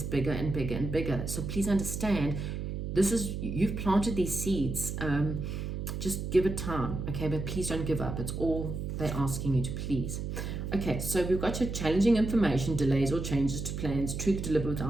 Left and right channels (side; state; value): right; noise; hum, 4 dB below the sound